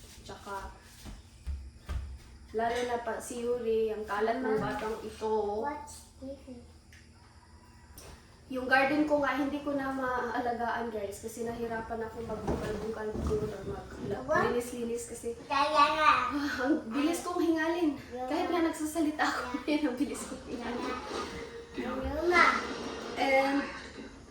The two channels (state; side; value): identical; both; correlation 1.00